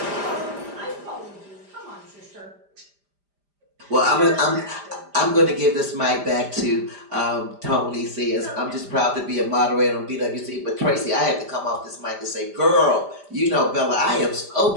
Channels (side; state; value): left; late; 5.0 ms